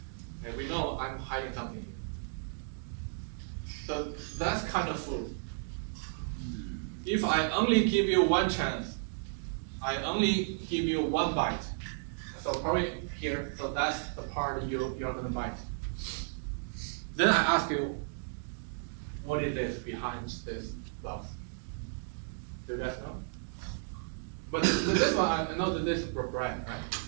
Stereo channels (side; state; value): left; silent; digital silence